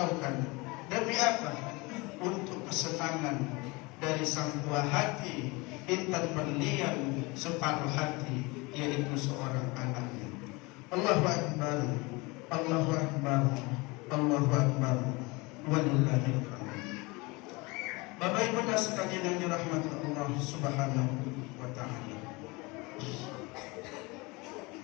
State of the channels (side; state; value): right; quieter; 25.2 dB